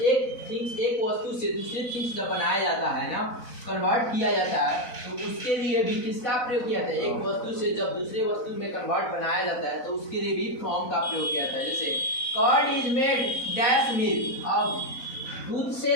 एक वस्तु से दूसरी थिंग्स जब बनाया जाता है ना, कन्वर्ट किया जाता है तो उसके लिए भी किसका प्रयोग किया जाता है, एक वस्तु से जब दूसरे वस्तु में कन्वर्ट बनाया जाता है तो उसके लिए भी फ्रॉम का प्रयोग किया जाता है। जैसे curd is made dash milk, अब दूध से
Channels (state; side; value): late; right; 4.0 ms